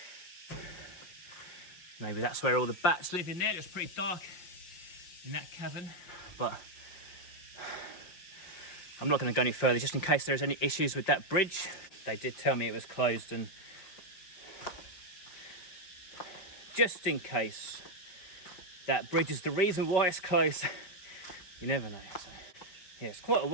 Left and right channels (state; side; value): late; right; 5.6 ms